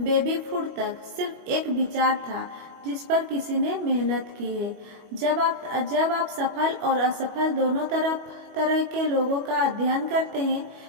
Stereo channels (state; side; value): late; left; 25 ms